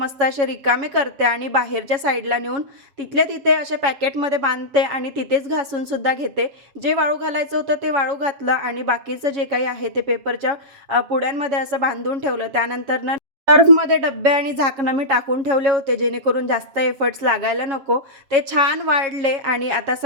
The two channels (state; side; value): late; left; 7.4 ms